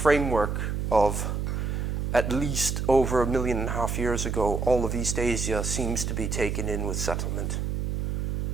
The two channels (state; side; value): noise; right; hum, 1 dB below the sound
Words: of at least over 1.5 million years ago, all of East Asia seems to be taken in with settlement.